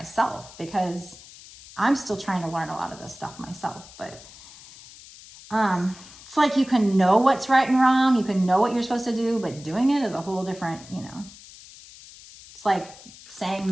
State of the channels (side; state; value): left; noise; hiss, 19 dB below the sound